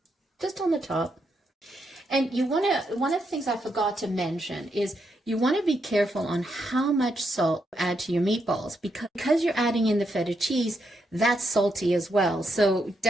Just on the top. And you want to, one of the things I forgot to mention is you want to be careful on how much salt you add to your meatballs, because you're adding in the feta cheese, that's salty as well. So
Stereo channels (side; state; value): both; normal; correlation 0.80